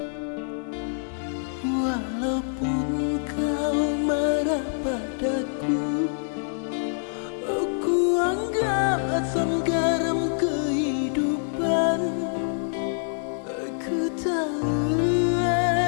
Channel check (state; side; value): silent; right; 61 dB below the other